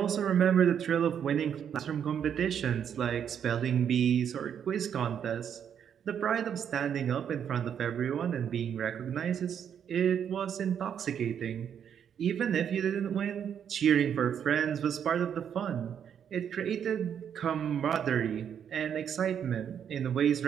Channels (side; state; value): left; quieter; 8.4 dB